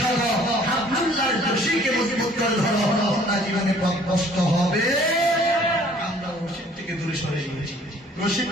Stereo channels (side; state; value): both; normal; correlation 0.56